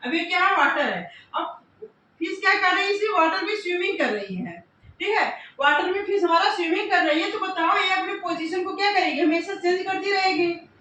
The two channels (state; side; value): identical; both; correlation 1.00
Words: अब ये क्या है, वाटर है। अब फिश क्या कर रही है, इसी वाटर में स्विमिंग कर रही है, ठीक है। वाटर में फिश हमारा स्विमिंग कर रही है, तो बताओ ये अपने पोजीशन को क्या करेगी, हमेशा चेंज करती रहेगी।